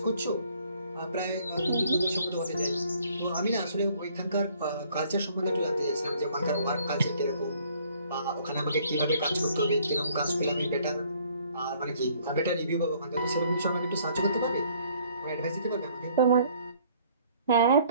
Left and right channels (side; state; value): both; inverted; correlation -0.61